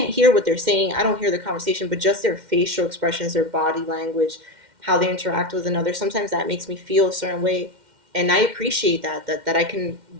hear what they're saying. I don't hear the conversation, but just their facial expressions, their body language, how they interact with another. Sometimes that makes me feel a certain way, and I appreciate that I can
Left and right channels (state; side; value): late; left; 2.1 ms